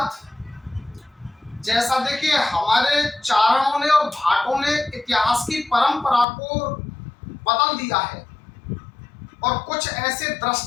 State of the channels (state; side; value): drops out; right; at 6.2 s